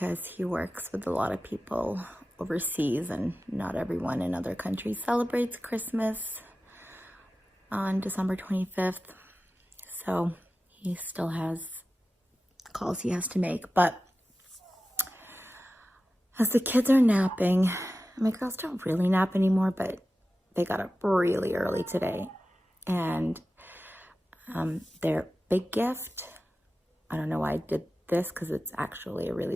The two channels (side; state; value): both; normal; correlation 0.94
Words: he works with a lot of people overseas and not everyone in other countries celebrates Christmas on December 25th. So he still has calls he has to make. But as the kids are napping, my girls don't really nap anymore, but they got up really early today. And their big gift, I don't know why I did this because it's actually a